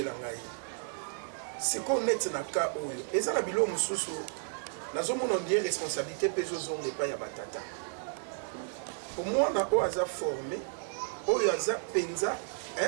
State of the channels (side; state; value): left; silent; digital silence